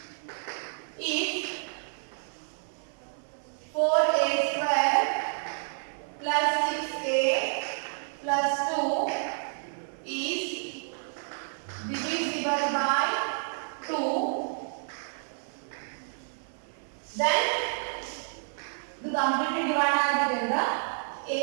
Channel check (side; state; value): left; silent; 58 dB below the other